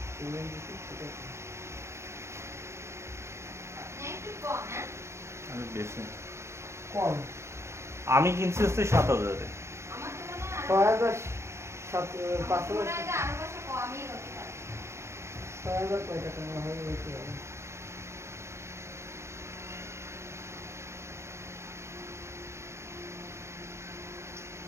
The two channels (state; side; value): late; left; 0.13 ms